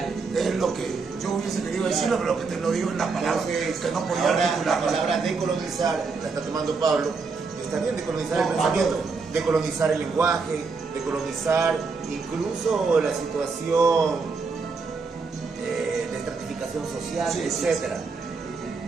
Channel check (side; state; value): left; quieter; 4.6 dB